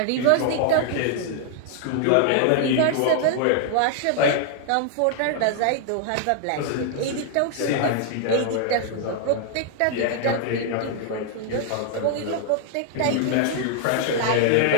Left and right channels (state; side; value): different; both; correlation 0.00